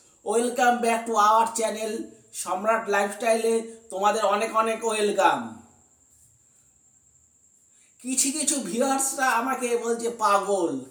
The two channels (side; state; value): both; identical; correlation 1.00